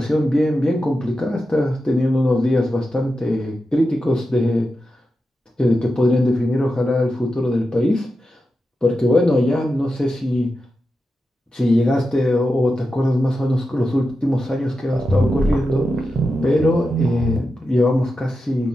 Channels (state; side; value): normal; both; correlation 0.90